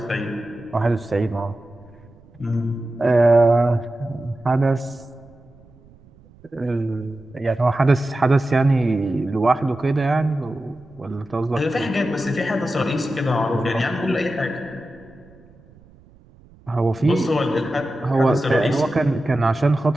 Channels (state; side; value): noise; right; rumble, 26 dB below the sound